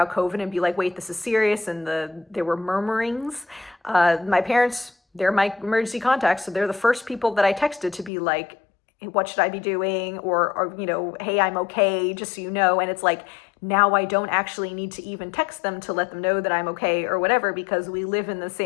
COVID and be wait, this is serious, and there were murmurings, my parents, they're my emergency contacts, so they're the first people that I texted to be what should I be doing? Or hey, I'm okay, just so you know. And it's now I don't actually need to even text them to let them know that I'm okay or whatever, because we live in the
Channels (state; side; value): drops out; right; at 8.1 s